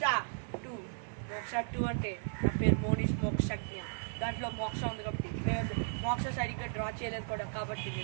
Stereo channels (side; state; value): left; silent; digital silence